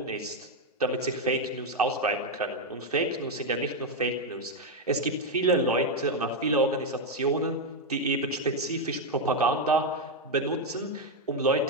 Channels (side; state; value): both; normal; correlation 0.03